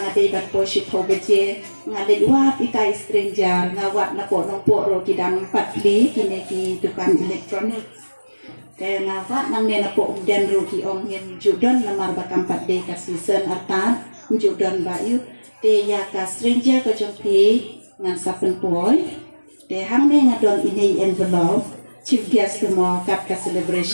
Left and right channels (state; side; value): inverted; both; correlation -1.00